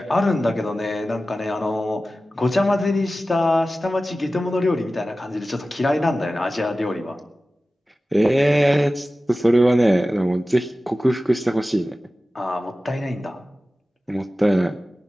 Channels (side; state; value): both; normal; correlation 0.95